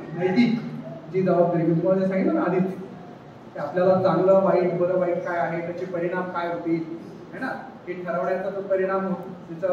नैतिक जी जबाबदारी मी तुम्हाला सांगितलं ना आधीच, की आपल्याला चांगलं वाईट, बरं वाईट काय आहे, त्याचे परिणाम काय होतील, है ना, हे ठरवण्याचा जो परिणाम होतो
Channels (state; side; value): identical; both; correlation 1.00